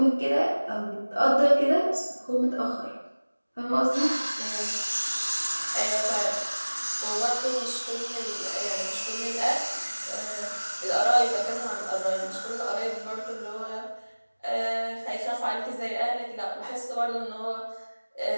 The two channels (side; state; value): both; inverted; correlation -1.00